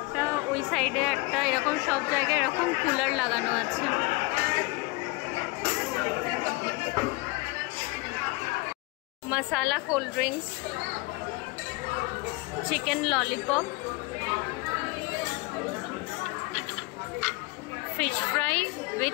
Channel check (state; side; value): quieter; right; 25.0 dB